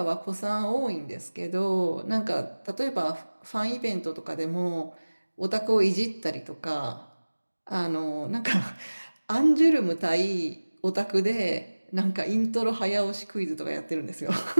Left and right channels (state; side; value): inverted; both; correlation -1.00